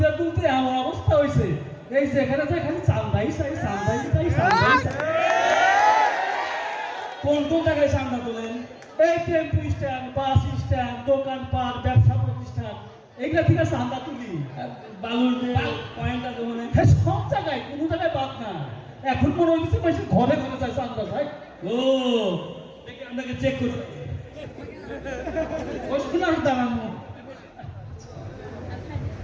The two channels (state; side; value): identical; both; correlation 1.00